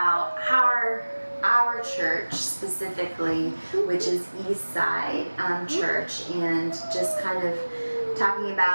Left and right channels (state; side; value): inverted; both; correlation -1.00